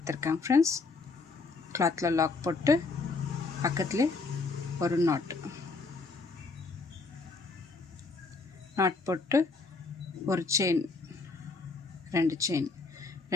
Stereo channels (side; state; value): right; quieter; 3.9 dB